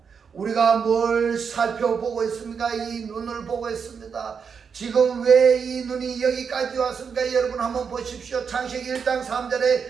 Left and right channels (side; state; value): left; quieter; 6.3 dB